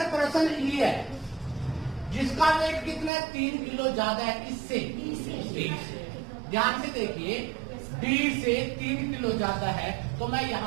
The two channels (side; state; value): left; drops out; at 3.1 s